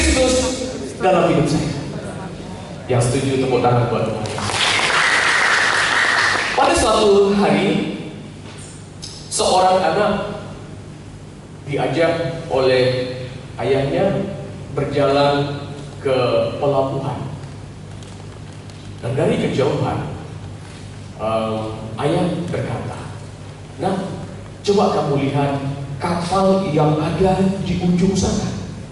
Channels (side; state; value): both; identical; correlation 1.00